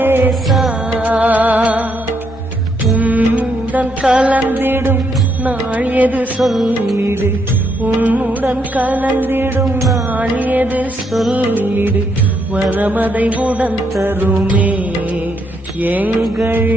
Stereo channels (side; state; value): both; normal; correlation 0.75